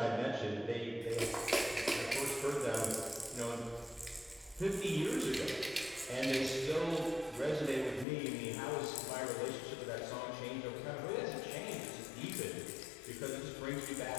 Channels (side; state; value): right; drops out; at 8.1 s